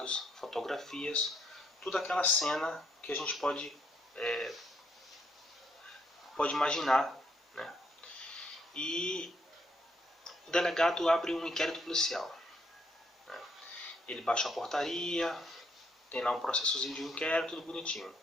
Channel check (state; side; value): normal; both; correlation 0.73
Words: fotografias, toda aquela cena que a gente pode imaginar, né? E o delegado abre um inquérito policial, né? Ele baixa a portaria, tem lá um processozinho de inquérito, tudo bonitinho.